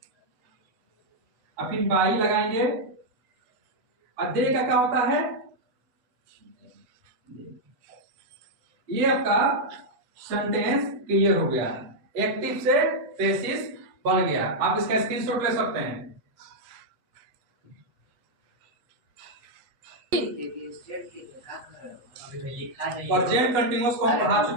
अब फिर बाई लगाएंगे। और दे का क्या होता है? ये आपका सेंटेंस क्लियर हो गया, एक्टिव से पैसिव बन गया। आप इसका स्क्रीनशॉट ले सकते हैं। प्रेजेंट कंटीन्यूअस को हम पढ़ा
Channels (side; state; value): left; late; 8.1 ms